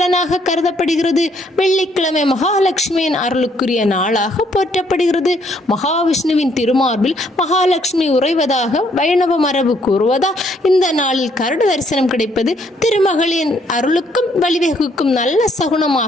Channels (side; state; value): both; normal; correlation 0.68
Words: கருதப்படுகிறது. வெள்ளிக்கிழமை மகாலட்சுமியின் அருளுக்குரிய நாளாக போற்றப்படுகிறது. மகாவிஷ்ணுவின் திருமார்பில் மகாலட்சுமி உறைவதாக வைணவ மரபு கூறுவதால் இந்த நாளில் கருட தரிசனம் கிடைப்பது திருமகளின் அருளுக்கும் வழிவகுக்கும் நல்ல